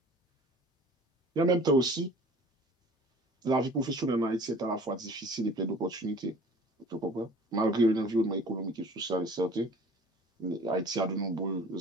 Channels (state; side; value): normal; both; correlation 0.47